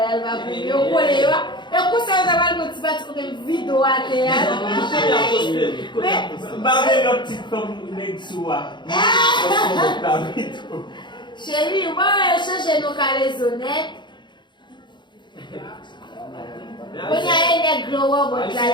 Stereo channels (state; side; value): late; right; 0.22 ms